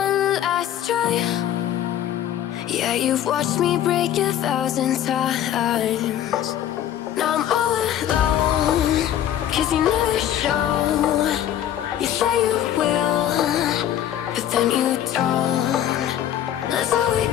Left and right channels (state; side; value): quieter; right; 11.2 dB